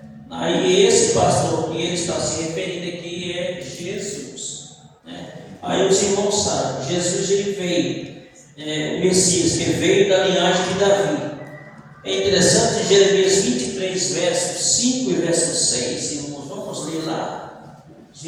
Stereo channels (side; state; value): both; identical; correlation 1.00